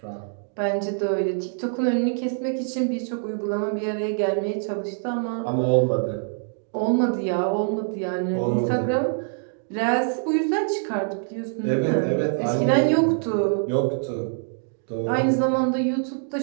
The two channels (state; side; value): silent; left; digital silence